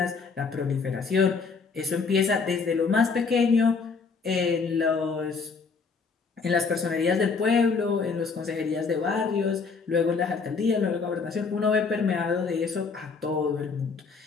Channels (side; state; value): right; quieter; 4.9 dB